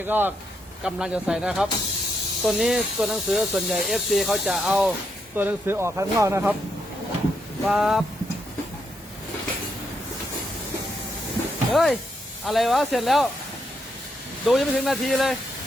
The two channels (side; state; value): both; normal; correlation 0.79